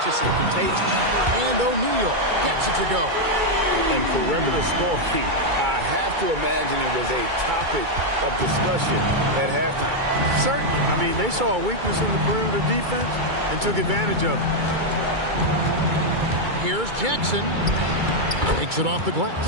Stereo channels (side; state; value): left; late; 2.3 ms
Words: and contagious. And O'Neal gets it to go. And perimeter scoring, I have to imagine it was a topic of discussion at halftime. Certainly. I mean, they saw a weakness in the perimeter defense and took advantage of it. Here's Jackson. Takes it off the